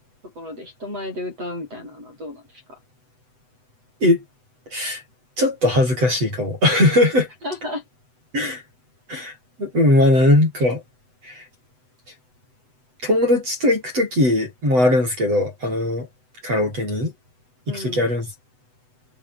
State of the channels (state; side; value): late; left; 8.0 ms